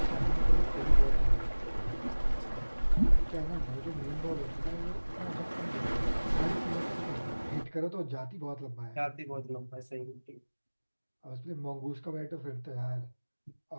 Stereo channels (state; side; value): inverted; both; correlation -1.00